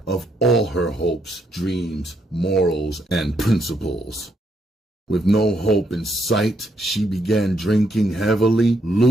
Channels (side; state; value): both; normal; correlation 0.75